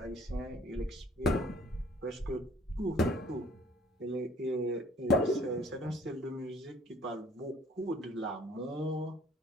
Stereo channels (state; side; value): normal; both; correlation 0.57